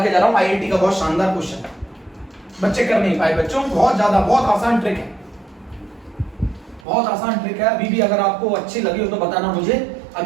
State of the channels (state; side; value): drops out; left; at 6.9 s